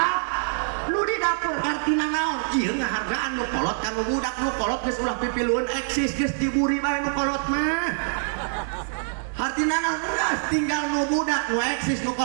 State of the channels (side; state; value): left; silent; digital silence